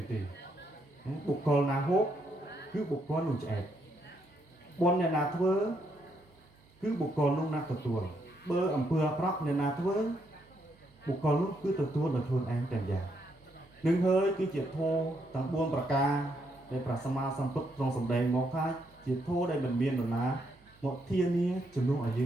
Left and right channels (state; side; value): noise; right; hum, 30 dB below the sound